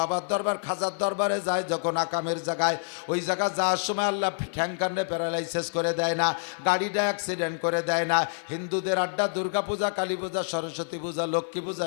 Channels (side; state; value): right; silent; 60 dB below the other